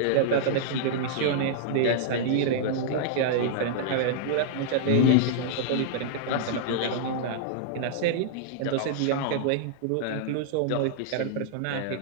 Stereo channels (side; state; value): both; different; correlation -0.01